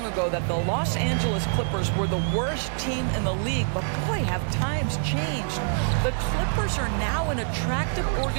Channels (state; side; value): silent; left; digital silence